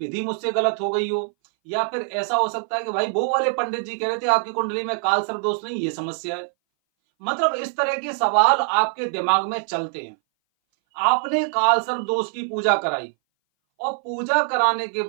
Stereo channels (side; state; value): left; silent; 60 dB below the other